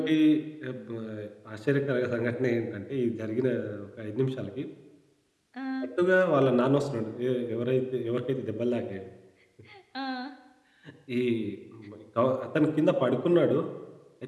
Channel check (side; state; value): both; identical; correlation 1.00